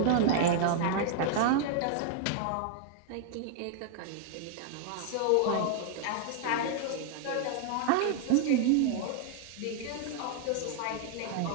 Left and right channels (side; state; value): both; different; correlation 0.00